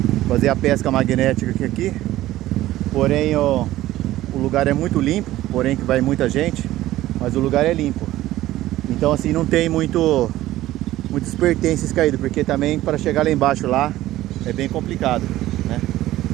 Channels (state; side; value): quieter; left; 15.3 dB